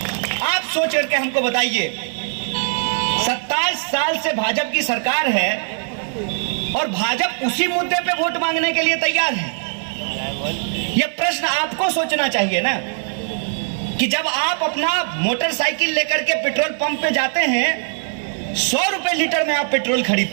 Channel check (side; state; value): left; silent; 56 dB below the other